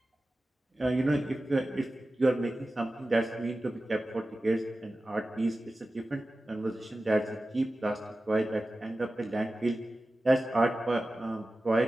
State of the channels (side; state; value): both; normal; correlation 0.95